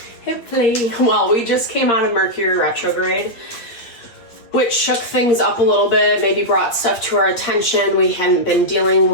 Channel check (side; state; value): right; late; 8.4 ms